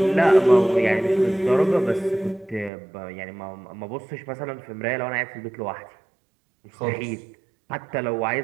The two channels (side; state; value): left; drops out; at 2.7 s